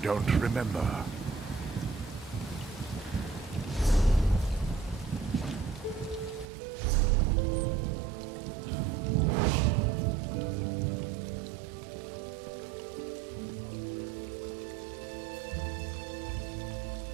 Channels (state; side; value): drops out; left; at 6.5 s